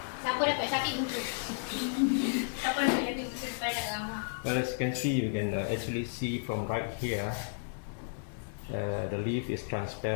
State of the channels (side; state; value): right; silent; digital silence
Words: Well, as you can see, you can actually see from right here. The leaf is